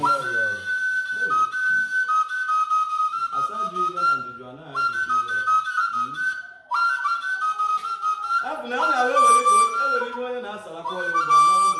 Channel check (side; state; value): both; identical; correlation 1.00